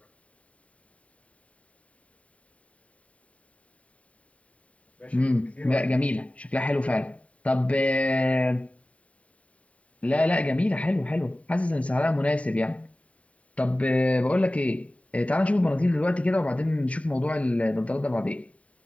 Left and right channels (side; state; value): right; late; 0.066 ms